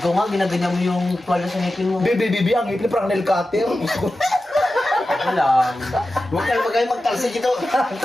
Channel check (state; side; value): normal; both; correlation 0.93